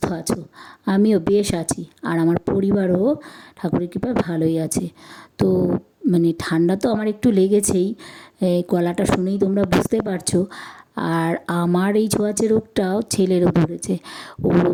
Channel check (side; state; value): both; identical; correlation 1.00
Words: আছো। আমিও বেশ আছি, আর আমার পরিবারও ঠাকুরের কৃপায় ভালোই আছে। তো ঠান্ডা তো আমার একটু লেগেছেই, গলাটা শুনেই তোমরা বুঝতে পারছো। আর আমার এই ছোঁয়াচে রোগটাও ছেলেরও ধরেছে। ওরও